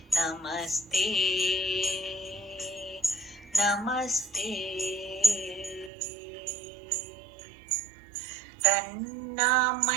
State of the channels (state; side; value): drops out; left; at 5.9 s